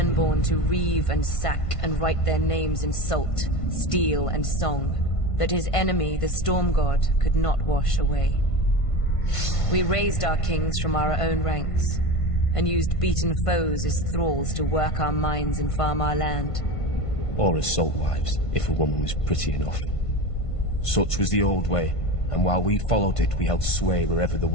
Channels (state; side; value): late; right; 1.5 ms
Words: to reave and sack and write their names in salt, steel, and song, that his enemy, the Storm God, could not wash away. We raised our kings from our own ranks, and used beaten foes as thralls to work our mines and farm our land. Or as salt wives, if a woman was pretty enough. Such was the old way, and while we followed it, we held sway wherever the